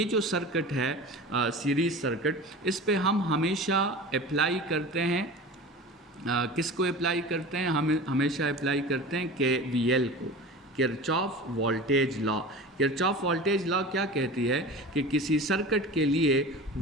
जो सर्किट है सीरीज़ सर्किट, इस पे हम हमेशा अप्लाई करते हैं किसको अप्लाई करते हैं? हम हमेशा अप्लाई करते हैं KVL को, Kirchhoff voltage law. Kirchhoff voltage law क्या कहती है कि किसी सर्किट के लिए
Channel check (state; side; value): normal; both; correlation 0.34